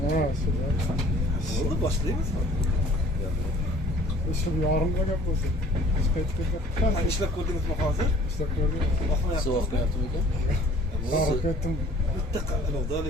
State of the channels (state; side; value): normal; both; correlation 0.52